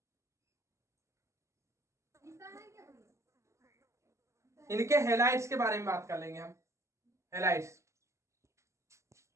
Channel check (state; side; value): late; left; 0.14 ms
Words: इनके हेलाइड्स के बारे में बात कर लेंगे हम। हेलाइड्स,